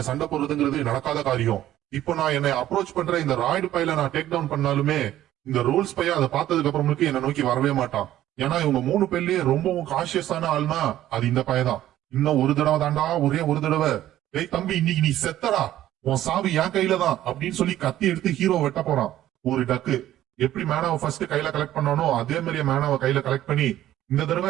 சண்டை போடுறதுங்கிறது நடக்காத காரியம். இப்போ நான் என்னை அப்ரோச் பண்ற இந்த ராய்டு பையில நான் டேக் டவுன் பண்ணாலுமே இந்த ரோல்ஸ் பையன் அதை பார்த்ததுக்கு அப்புறமுக்கு என்ன நோக்கி வரவே மாட்டான். ஏன்னா இவங்க 3 பேர்லயே ரொம்பவும் கான்சியஸான ஆள்னா அது இந்த பையதான். இன்னும் ஒரு தடவை தாண்டா, ஒரே ஒரு தடவை, ஏய் தம்பி இன்னைக்கு நீ செத்தடா, உன் சாவி என் கையில தான் அப்படின்னு சொல்லி கத்தி எடுத்து ஹீரோ வெட்ட போறான். ஒரு டக்கு எப்படி மேனாவை ஃபர்ஸ்ட் கையில கலெக்ட் பண்ணானோ அதே மாதிரியே மேனாவை கையில கலெக்ட் பண்ணி இந்த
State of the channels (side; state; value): left; quieter; 13.2 dB